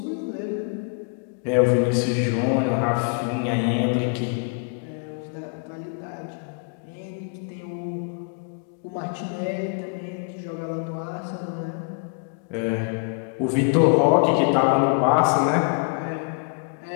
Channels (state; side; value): quieter; right; 37.3 dB